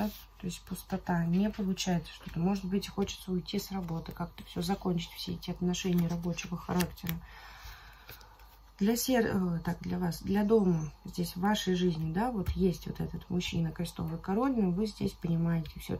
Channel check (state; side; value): identical; both; correlation 1.00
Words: То есть пустота, не получается что-то. Может быть, хочется уйти с работы, как-то все закончить, все эти отношения рабочего характера. Для вас, для дома, здесь в вашей жизни, да, вот есть вот этот мужчина, крестовый король, но вы здесь понимаете